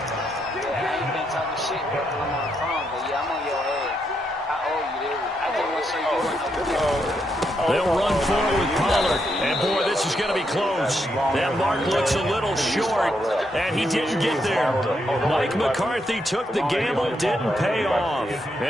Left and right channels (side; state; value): both; normal; correlation 0.79